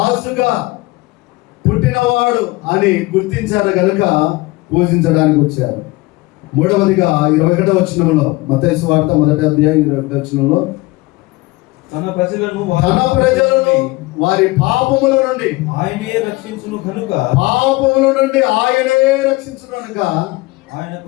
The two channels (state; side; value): quieter; right; 21.5 dB